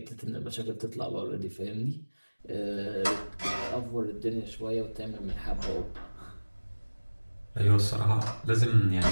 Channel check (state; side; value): inverted; both; correlation -1.00